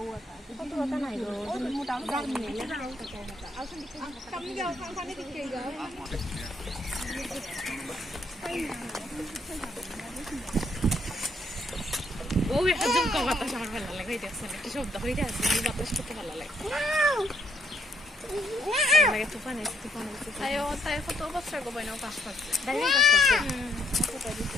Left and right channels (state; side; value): normal; both; correlation 0.71